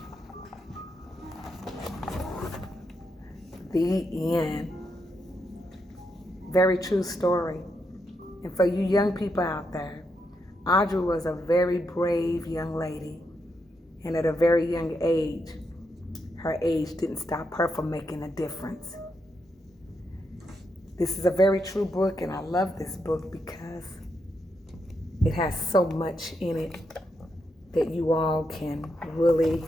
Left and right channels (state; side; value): normal; both; correlation 0.81